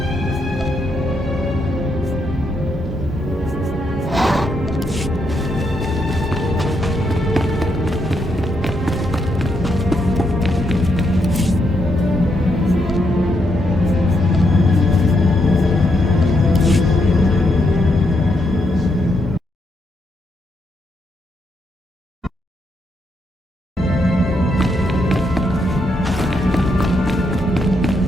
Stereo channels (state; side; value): normal; both; correlation 0.79